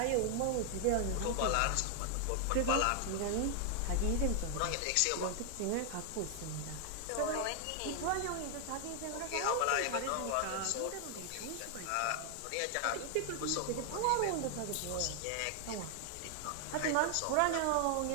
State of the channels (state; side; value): different; both; correlation 0.00